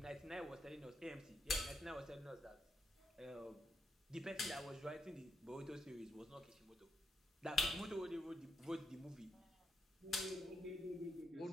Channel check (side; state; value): both; normal; correlation 0.80